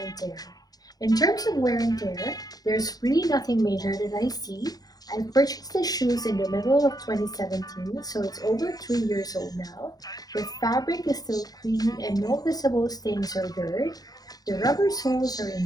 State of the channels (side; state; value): right; late; 0.19 ms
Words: and tear. In terms of wear and tear, there's really nothing major that I see. I purchased the shoes in the middle of 2017, so it's over 3 years old now. The fabric is still clean and no visible stains or dirt. The rubber soles are